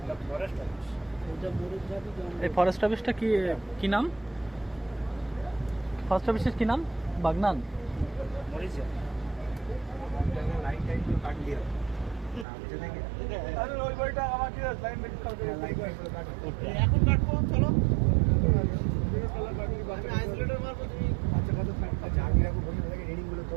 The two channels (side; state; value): left; drops out; at 12.5 s